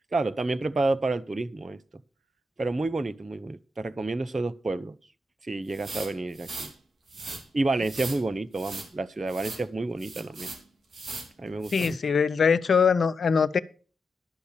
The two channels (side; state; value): both; normal; correlation 0.86